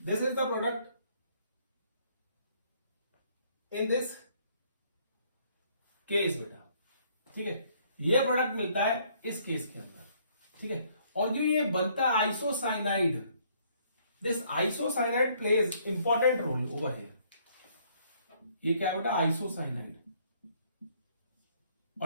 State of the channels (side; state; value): both; inverted; correlation -0.65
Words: This is the product in this case बेटा, ठीक है। ये प्रोडक्ट मिलता है इस केस के अंदर, ठीक है। और जो ये बनता है isocyanide, this isocyanide pledge important roll over here. ये क्या है बेटा, आइसोसाइनाइड,